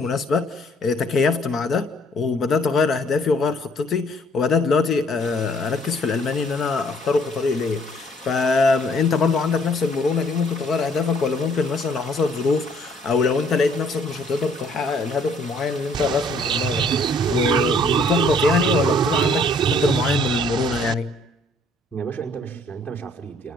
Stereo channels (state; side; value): normal; both; correlation 0.61